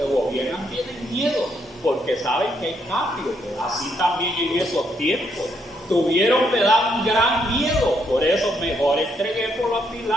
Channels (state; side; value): normal; both; correlation 0.75